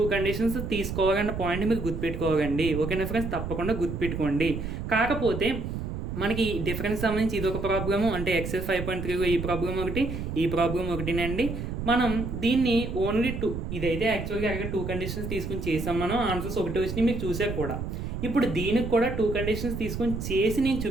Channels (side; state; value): right; noise; rumble, 5 dB below the sound